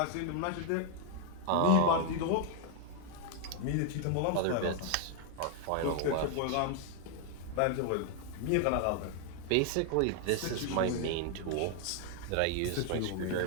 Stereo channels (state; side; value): different; both; correlation 0.00